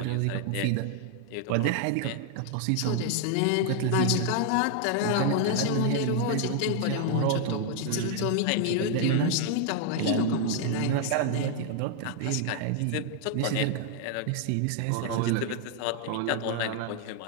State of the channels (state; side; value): different; both; correlation 0.00